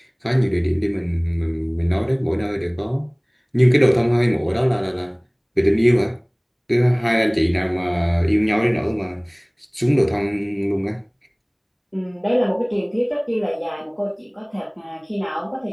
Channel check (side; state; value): both; identical; correlation 1.00